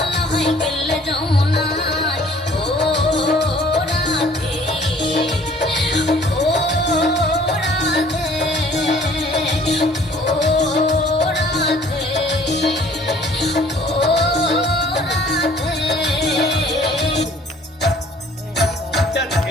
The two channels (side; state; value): both; normal; correlation 0.54